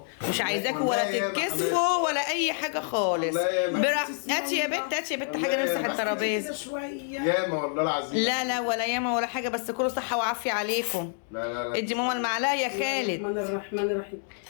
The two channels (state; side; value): silent; right; 57 dB below the other